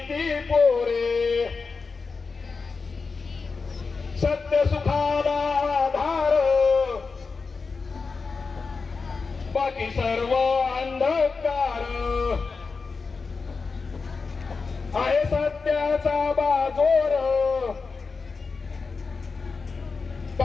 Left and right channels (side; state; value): right; quieter; 4.6 dB